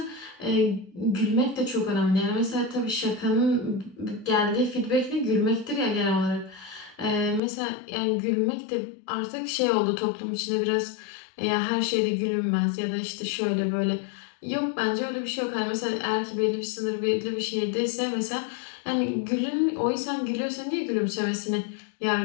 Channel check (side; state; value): right; drops out; at 7.4 s